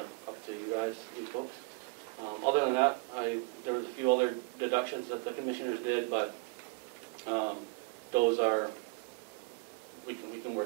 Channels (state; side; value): quieter; left; 28.3 dB